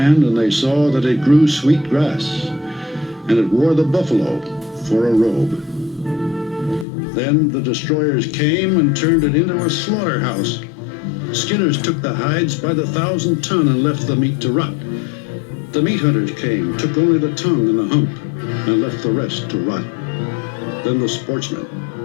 and they saw that it grew sweet grass, and it wore the buffalo for a robe. Then the destroyers came and turned it into a slaughterhouse. Skinners took the hides by the 1,000 ton and left the meat to rot. The meat hunters came, took only the tongue and the hump, and left the rest to rot. Then the sportsmen,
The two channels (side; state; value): right; drops out; at 6.9 s